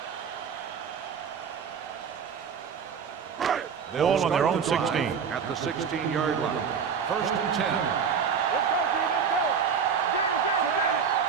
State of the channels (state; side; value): quieter; left; 6.7 dB